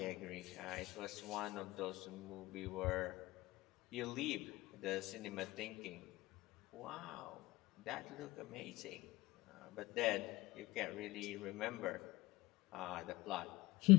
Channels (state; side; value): quieter; right; 20.0 dB